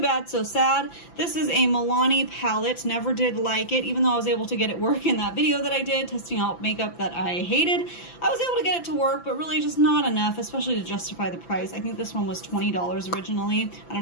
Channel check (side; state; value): right; late; 5.9 ms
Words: so sad. This is a Milani palette. Never did like it, even though I was able to get it work in that video that I did, testing out makeup that I hated. I was able to get it to work, but really just not enough, especially to justify the price. I think this one was $20 originally. I